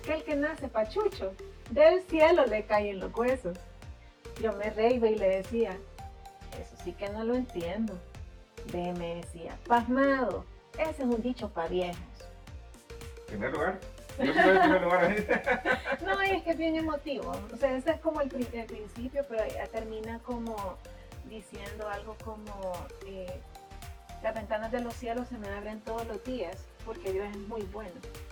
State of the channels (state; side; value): identical; both; correlation 1.00